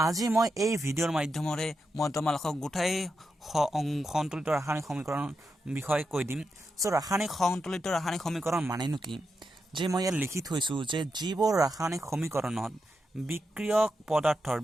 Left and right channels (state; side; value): normal; both; correlation 0.86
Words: আজি মই এই ভিডিঅ'ৰ মাধ্যমেৰে মই তোমালোকক গোটাই সন্তুলিত ৰাসায়নিক সমীকৰণ বিষয়ে কৈ দিম। সো সন্তুলিত ৰাসায়নিক সমীকৰণ মানেনো কি? যে মই ইয়াত লিখি থৈছো যে যিবোৰ ৰাসায়নিক সমীকৰণত বিক্ৰিয়ক